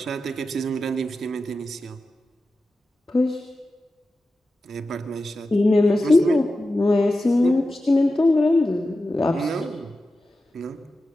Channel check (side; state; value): both; normal; correlation 0.92